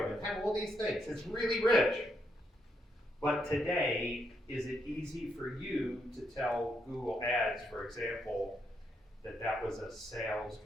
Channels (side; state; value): both; normal; correlation 0.78